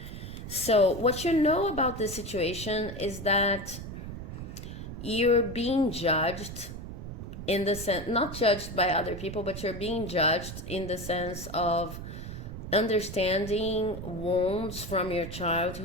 So what you know about this situation is that you're being judged in the sense, not judged by other people, but you're being judged in the sense of understanding wounds from your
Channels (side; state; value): right; noise; rumble, 9 dB below the sound